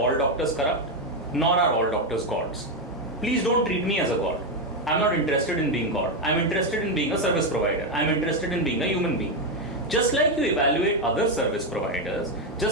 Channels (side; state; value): both; normal; correlation 0.06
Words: doctors corrupt, nor are all doctors gods. Please don't treat me as a god. I'm not interested in being God. I'm interested in being a service provider. I'm interested in being a human being. Just like you evaluate other service providers,